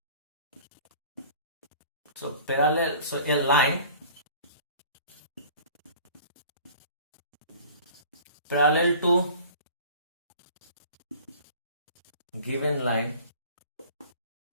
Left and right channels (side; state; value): both; inverted; correlation -0.45